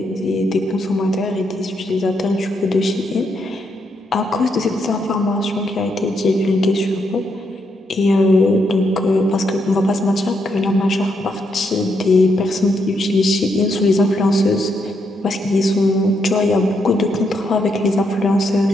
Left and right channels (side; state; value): both; normal; correlation 0.79